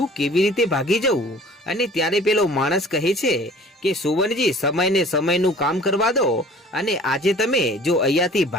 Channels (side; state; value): both; normal; correlation 0.48